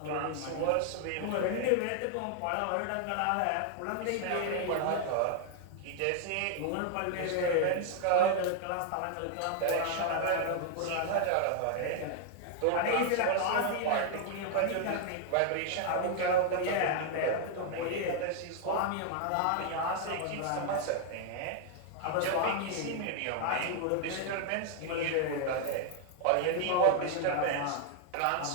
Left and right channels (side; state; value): both; different; correlation 0.00